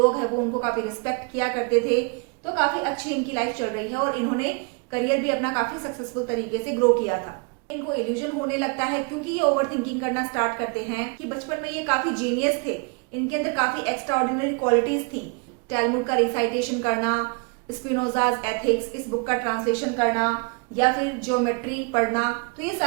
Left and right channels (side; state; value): left; quieter; 33.8 dB